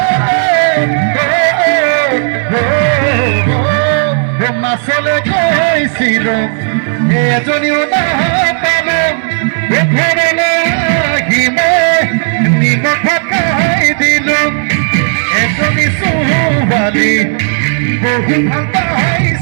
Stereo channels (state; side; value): silent; left; digital silence